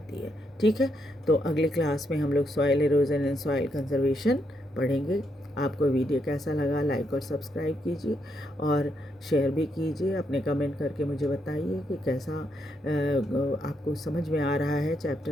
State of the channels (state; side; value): normal; both; correlation 0.79